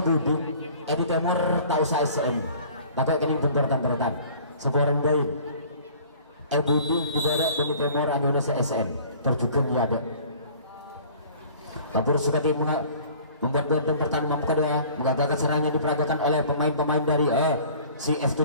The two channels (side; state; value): both; inverted; correlation -0.49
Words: Budi Edi Timur tahu saya SM takut kening bentur-benturan sebuah bayi Budi diberek Edi Timur Indonesia SM terjugan ya ada Labor Sukati membuat benteng pertahanan mampu kedua mengagalkan serangan diperagakan oleh pemain-pemain dari si